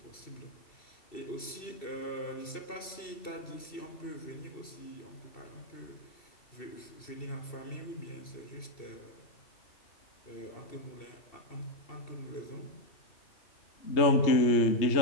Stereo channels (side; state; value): right; late; 2.7 ms